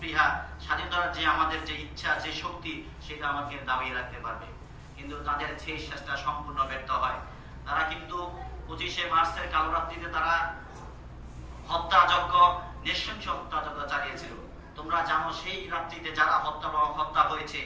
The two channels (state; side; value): identical; both; correlation 1.00